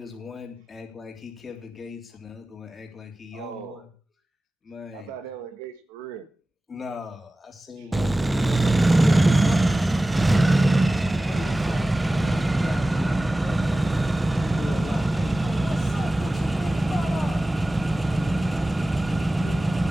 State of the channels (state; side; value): normal; both; correlation 0.96